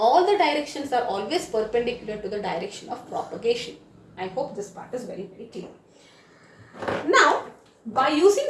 the directions are always perpendicular to the direction of propagation. I hope this part is very clear. Now, by using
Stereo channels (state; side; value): identical; both; correlation 1.00